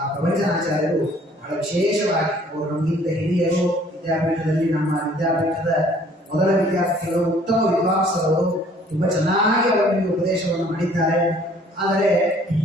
ಪ್ರವಚನಾಚಾರ್ಯರು ಬಹಳ ವಿಶೇಷವಾಗಿ, ಅವರು ನಮಗಿಂತ ಹಿರಿಯರು, ವಿದ್ಯಾಪೀಠದಲ್ಲಿ ನಮ್ಮ ವಿದ್ಯಾಪೀಠದ ಮೊದಲ ವಿದ್ಯಾರ್ಥಿಗಳು, ಉತ್ತಮ ವಿದ್ವಾಂಸರು, ತುಂಬಾ ಚೆನ್ನಾಗಿ ಅವರಿಗೆ ಉಪದೇಶವನ್ನು ಮಾಡಿದ್ದಾರೆ. ಆದರೆ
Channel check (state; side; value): normal; both; correlation 0.57